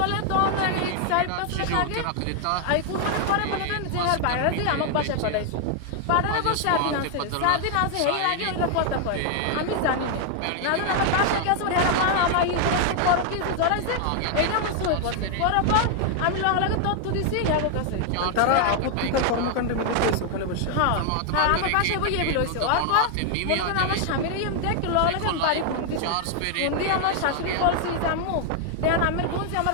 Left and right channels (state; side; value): different; both; correlation 0.00